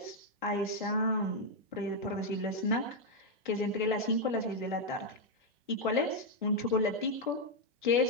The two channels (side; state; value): both; normal; correlation 0.00